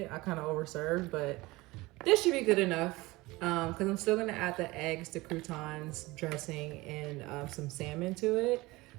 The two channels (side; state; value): left; quieter; 21.0 dB